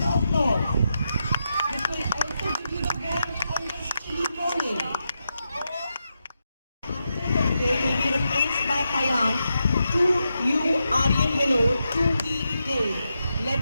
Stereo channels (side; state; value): both; inverted; correlation -0.86